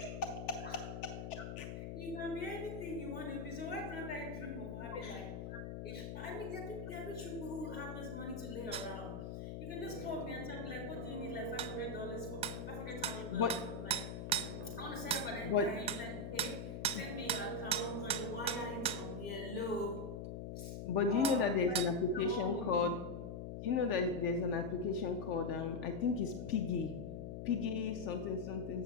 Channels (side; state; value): left; noise; hum, 6 dB below the sound